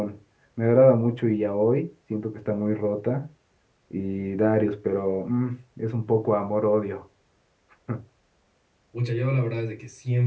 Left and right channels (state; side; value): identical; both; correlation 1.00